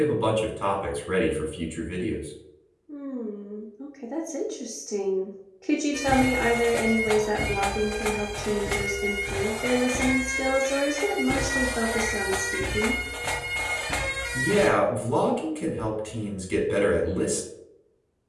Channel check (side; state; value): both; identical; correlation 1.00